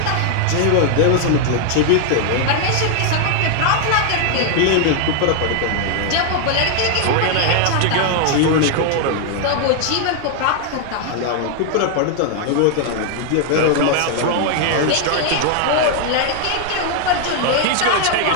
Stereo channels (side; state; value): both; different; correlation 0.00